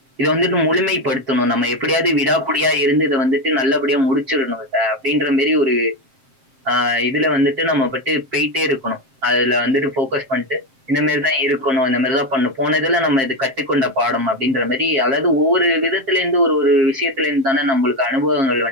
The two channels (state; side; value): late; left; 7.5 ms